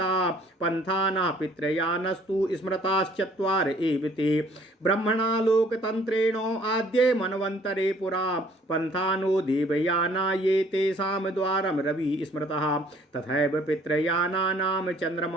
पन्थाना पितृयानस्तु स्मृताश्चत्वार एव ते ब्रह्मणा लोकतन्त्रेण आद्ये मन्वन्तरे पुरा पन्थानो देवयाना ये तेषां द्वारं रवि स्मृतः तथैव पितृयानानां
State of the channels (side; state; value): both; normal; correlation 0.59